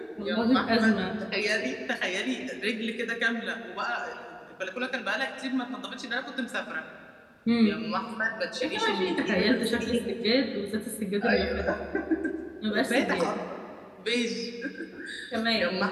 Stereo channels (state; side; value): identical; both; correlation 1.00